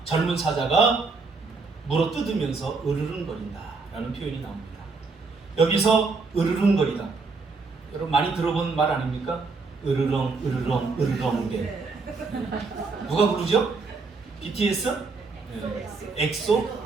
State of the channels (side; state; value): left; quieter; 4.2 dB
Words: 젊은 사자가 물어 뜯으면서 으르렁거린다 라는 표현이 나옵니다. 여기서 으르렁거리다, 여러분 많이 들어본 말 아닙니까? 으르렁 으르렁 으르렁대. 누가 부르죠? BTS? 네. 엑소?